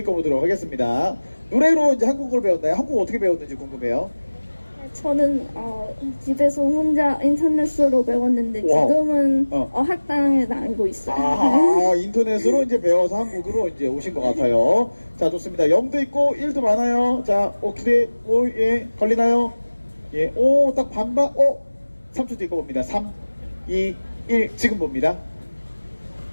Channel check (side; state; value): both; inverted; correlation -1.00